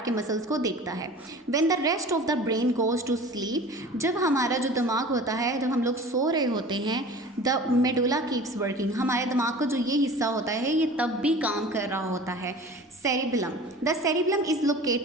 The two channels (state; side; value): normal; both; correlation 0.41